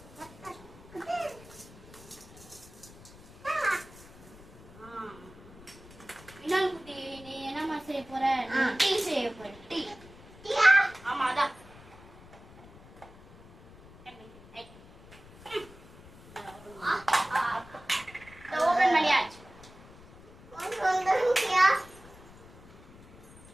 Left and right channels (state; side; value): noise; left; rumble, 21 dB below the sound